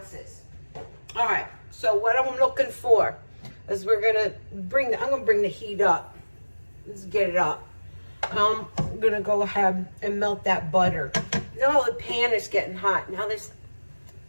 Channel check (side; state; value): both; inverted; correlation -1.00